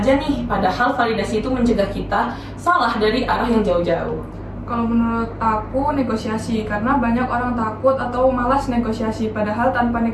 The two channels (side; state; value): both; identical; correlation 1.00